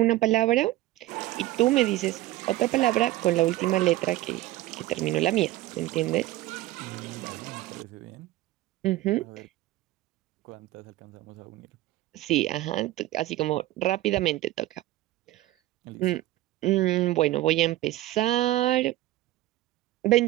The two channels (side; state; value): left; quieter; 16.5 dB